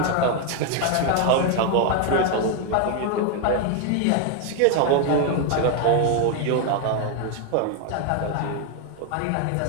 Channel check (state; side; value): different; both; correlation 0.01